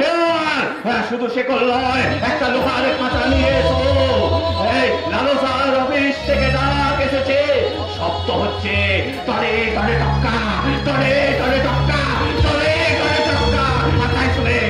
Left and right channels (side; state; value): both; identical; correlation 1.00